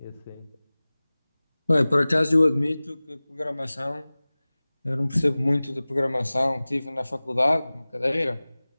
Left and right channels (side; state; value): both; inverted; correlation -0.99